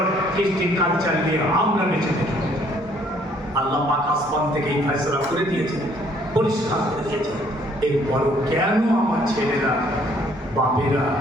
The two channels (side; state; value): both; normal; correlation 0.63